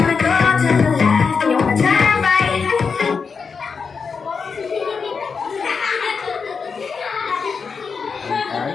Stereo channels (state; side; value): quieter; right; 5.4 dB